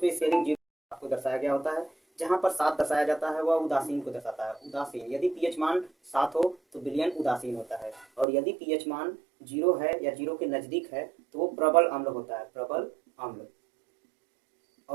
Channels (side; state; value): left; drops out; at 8.2 s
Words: स्केलिंग 0 आपको दर्शाया गया होता है। जहाँ पर 7 दर्शाया जाता है वह उदासीन को दर्शाता है। उदासीन यदि पीएच मान 7 हो तो विलयन उदासीन होता है, और यदि पीएच मान 0 है या 0 के नज़दीक है तो वो प्रबल अम्ल होता है, प्रबल अम्ल।